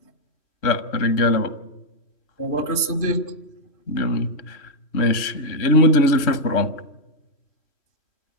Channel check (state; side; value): late; right; 3.1 ms